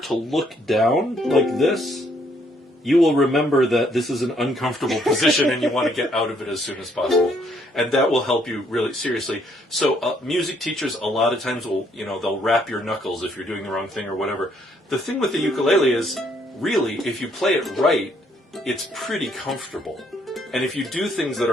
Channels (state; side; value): normal; both; correlation 0.69